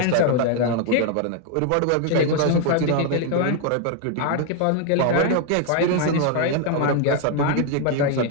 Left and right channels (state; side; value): different; both; correlation 0.00